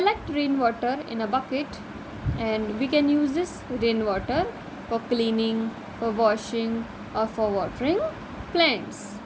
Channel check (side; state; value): both; identical; correlation 1.00